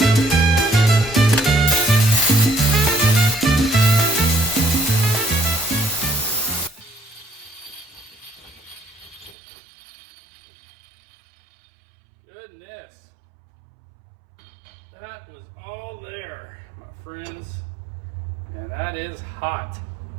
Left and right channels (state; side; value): drops out; left; at 9.3 s